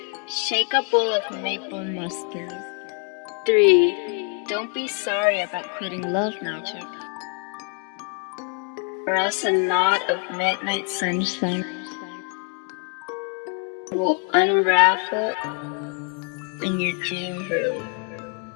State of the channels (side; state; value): right; quieter; 35.0 dB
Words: Shake a bowl of maple mustard. 3. Don't be sorry about quitting love magic, or else a knot of midnight sunshine will unravel in your dream room.